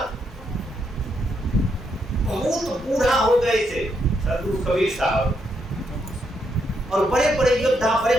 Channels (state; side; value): normal; both; correlation 0.78